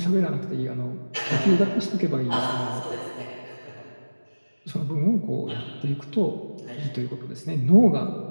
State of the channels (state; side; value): inverted; both; correlation -1.00